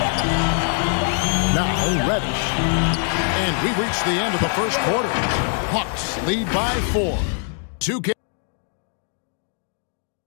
Now Reddish. And we reach the end of the first quarter. Hawks lead by 4. 2 K.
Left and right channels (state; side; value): silent; right; 57 dB below the other